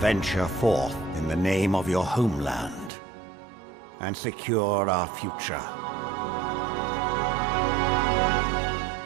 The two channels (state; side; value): drops out; left; at 2.9 s